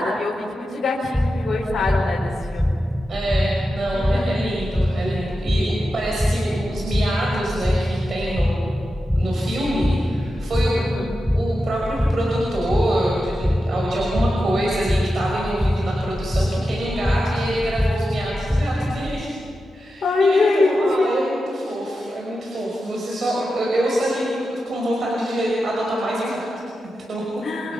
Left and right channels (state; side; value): normal; both; correlation 0.90